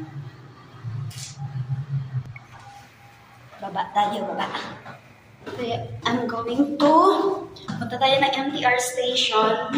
Baba tayo, baba. I'm going to punta tayo ng MTR station.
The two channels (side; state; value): both; identical; correlation 1.00